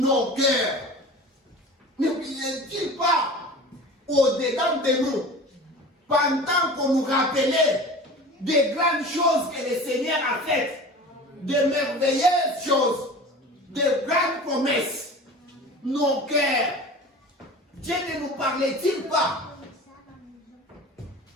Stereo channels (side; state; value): both; normal; correlation 0.37